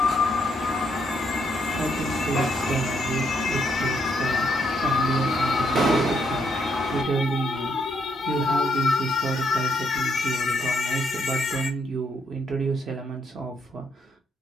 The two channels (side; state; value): both; normal; correlation 0.75